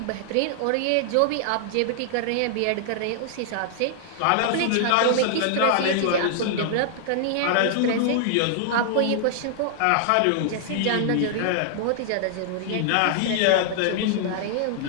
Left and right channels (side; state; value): both; different; correlation -0.01